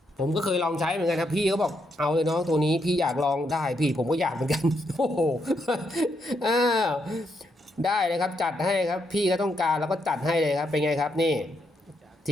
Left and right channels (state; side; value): normal; both; correlation 0.78